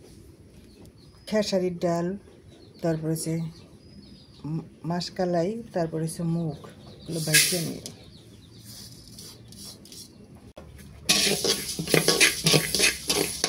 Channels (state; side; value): identical; both; correlation 1.00